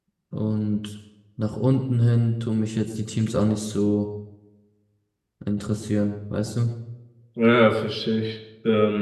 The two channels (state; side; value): identical; both; correlation 1.00